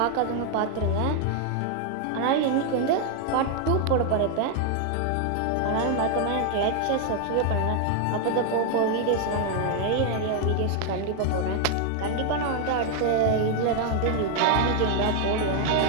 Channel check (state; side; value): different; both; correlation 0.00